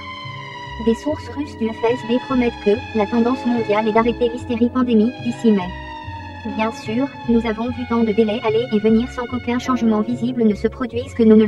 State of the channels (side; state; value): both; identical; correlation 1.00